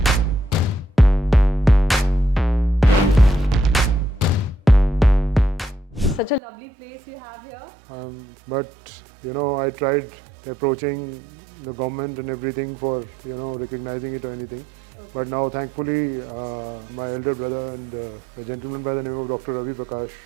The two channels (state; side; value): drops out; left; at 6.4 s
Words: Such a lovely place you have here. But I tried approaching the government and everything for recognizing it or anything. Okay. But now thankfully my elder brother and a gentleman by the name of Dr. Ravi Prakash,